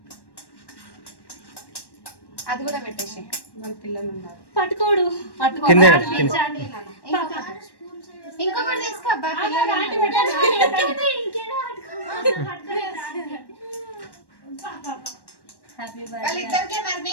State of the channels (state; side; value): late; right; 1.1 ms